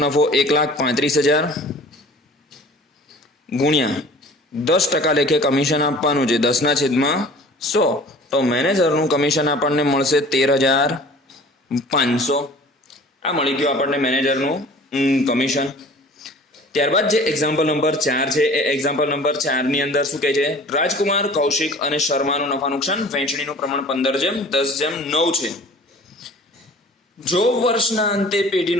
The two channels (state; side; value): normal; both; correlation 0.46